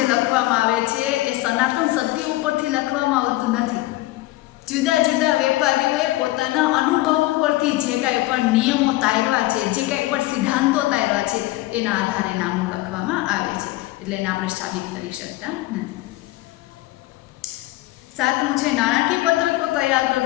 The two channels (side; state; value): right; quieter; 18.3 dB